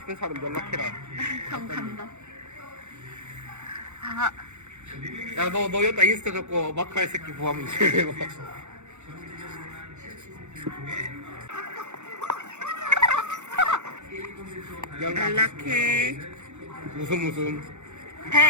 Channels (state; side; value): late; left; 0.83 ms